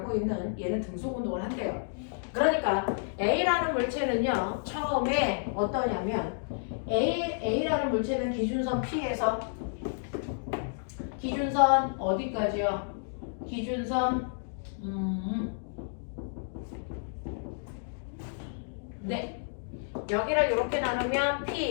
있는 얘는 등속 운동을 한대요. 그러니까 A라는 물체는요 처음에 어떠냐면 A라는 물체는 기준선 P에서 기준선 어디까지요? 기준선 네. 여기를 이렇게 나누면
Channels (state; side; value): silent; right; digital silence